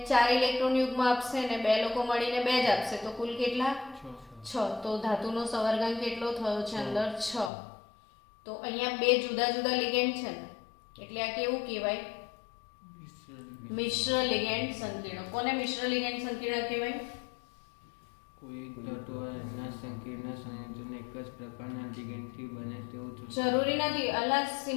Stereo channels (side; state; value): right; drops out; at 7.5 s